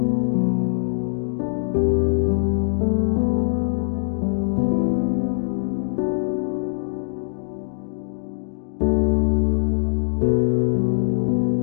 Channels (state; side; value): silent; right; digital silence